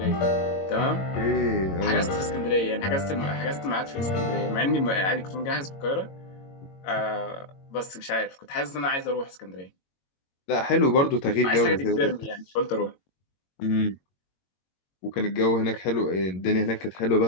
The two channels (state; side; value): late; right; 22 ms